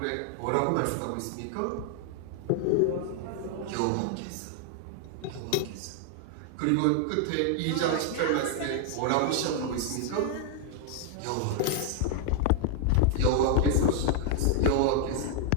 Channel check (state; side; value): different; both; correlation 0.00